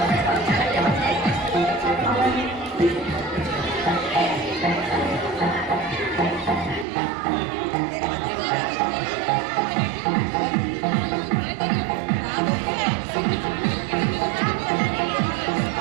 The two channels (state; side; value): drops out; left; at 6.9 s